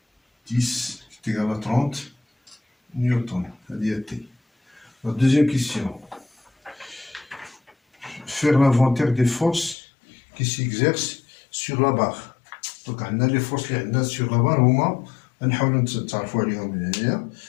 10 تيغالا 30 نيوتن. هذه هي تي. La deuxième question. Faire l'inventaire des forces qui s'exercent sur la barre. Donc, on a les forces qui sont sur la barre. On va essayer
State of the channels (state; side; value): drops out; right; at 9.8 s